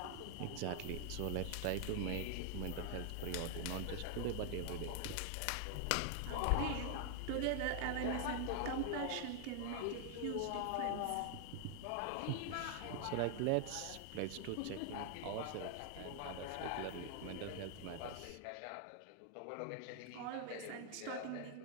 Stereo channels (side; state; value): both; different; correlation 0.00